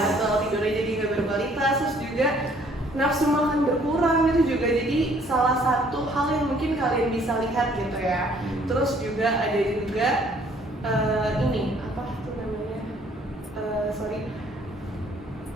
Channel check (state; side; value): normal; both; correlation 0.61